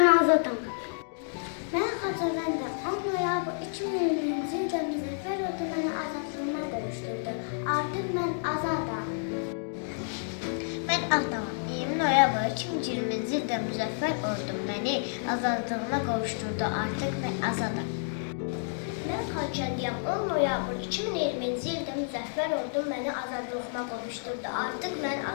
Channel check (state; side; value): silent; right; digital silence